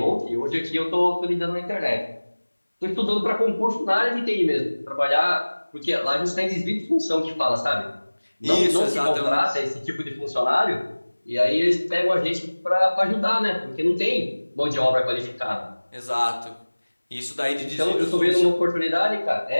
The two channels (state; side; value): inverted; both; correlation -1.00